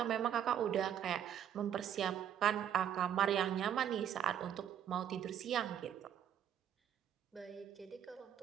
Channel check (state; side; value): quieter; left; 9.6 dB